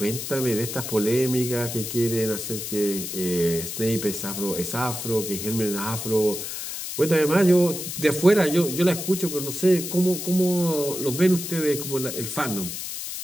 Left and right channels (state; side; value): noise; left; hiss, 6 dB below the sound